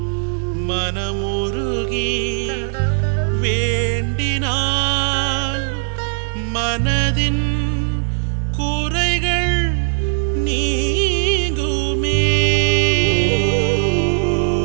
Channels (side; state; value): left; silent; 67 dB below the other